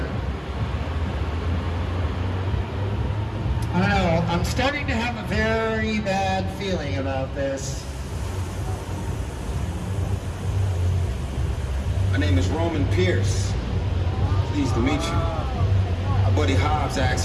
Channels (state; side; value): identical; both; correlation 1.00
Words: I don't know, I'm starting to have a very bad feeling about this. My name is Roman Pierce. Pleased to meet you. Our buddy Hobbs